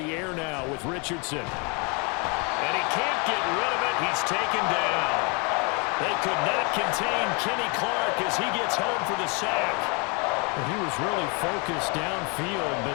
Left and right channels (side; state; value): right; quieter; 32.5 dB